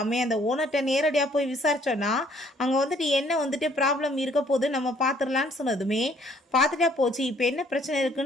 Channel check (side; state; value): both; normal; correlation 0.62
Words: அந்த ஓனர்கிட்ட நேரடியாக போய் விசாரிச்சோன்னா அங்கே வந்துட்டு என்ன வந்துட்டு ப்ராப்ளம் இருக்க போது நம்ம பார்த்துடலான்னு சொன்னதுமே பார்த்துட்டா போச்சு, இப்போ என்ன பிரச்சனை